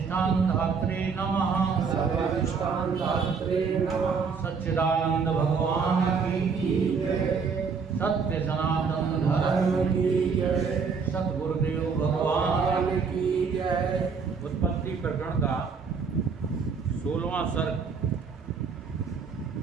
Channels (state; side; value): quieter; left; 5.5 dB